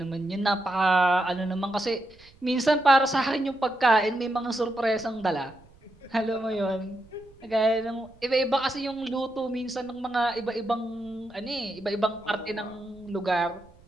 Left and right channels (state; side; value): noise; right; rumble, 26 dB below the sound